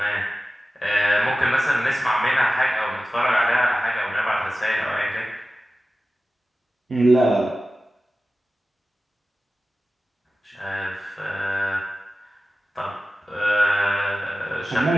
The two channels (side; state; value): both; normal; correlation 0.95